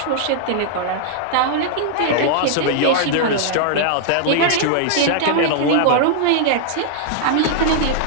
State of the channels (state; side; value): different; both; correlation -0.01